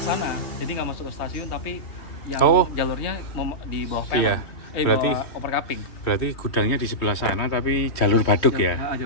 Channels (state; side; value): late; right; 3.2 ms